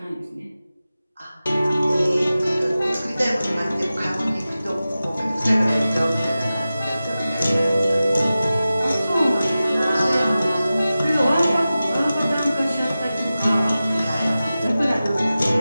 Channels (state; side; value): inverted; both; correlation -0.95